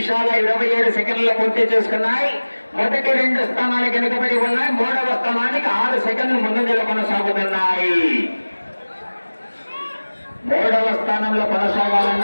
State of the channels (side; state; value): both; inverted; correlation -1.00